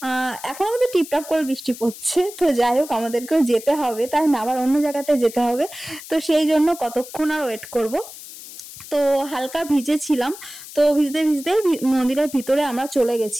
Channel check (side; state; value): left; noise; hiss, 15 dB below the sound